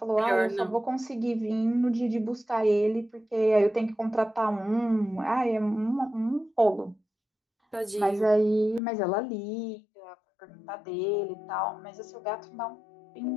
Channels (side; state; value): right; drops out; at 8.8 s